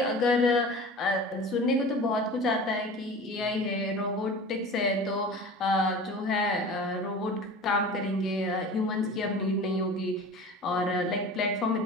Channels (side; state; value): both; normal; correlation 0.37